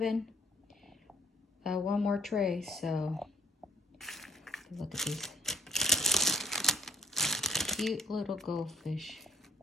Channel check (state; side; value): normal; both; correlation 0.60